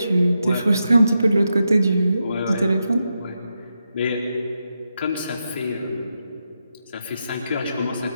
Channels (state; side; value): inverted; both; correlation -0.86